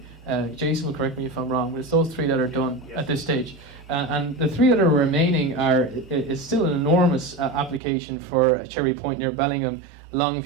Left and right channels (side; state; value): left; drops out; at 7.8 s